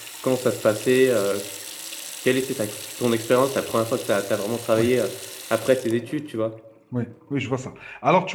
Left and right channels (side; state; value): both; identical; correlation 1.00